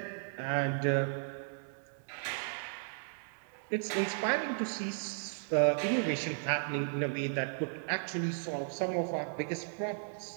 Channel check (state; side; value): silent; left; digital silence